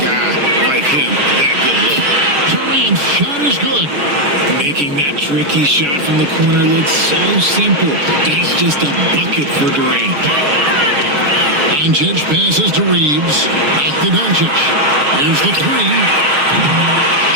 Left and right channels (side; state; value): left; late; 6.9 ms